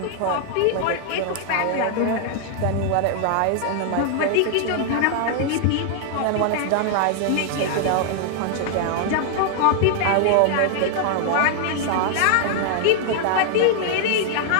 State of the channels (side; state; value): both; different; correlation 0.00